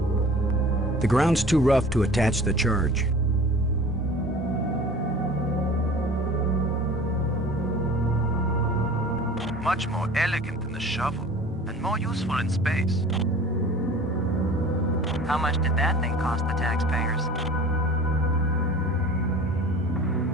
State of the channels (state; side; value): normal; both; correlation 0.43